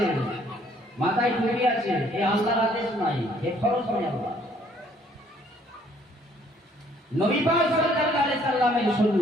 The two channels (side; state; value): both; normal; correlation 0.63